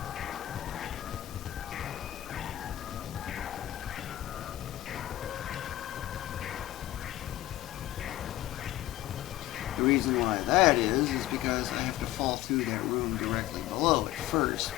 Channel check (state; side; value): quieter; right; 14.9 dB